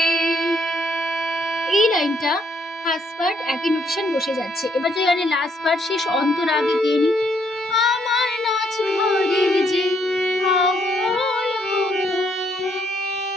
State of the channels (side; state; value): both; normal; correlation 0.71